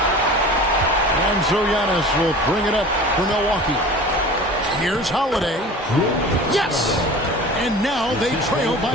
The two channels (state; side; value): normal; both; correlation 0.39